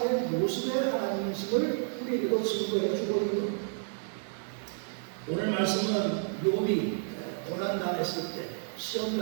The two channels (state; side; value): silent; left; digital silence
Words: 모습의 하나님이심을 우리에게도 증거해 주고 있는 겁니다. 오늘 말씀은 욥이 고난당했을 때